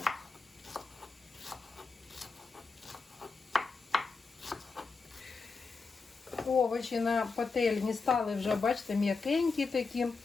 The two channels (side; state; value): right; quieter; 4.5 dB